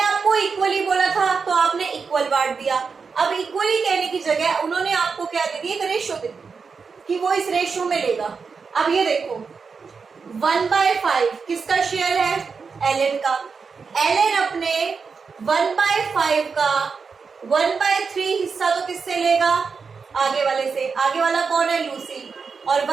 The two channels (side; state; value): left; quieter; 5.3 dB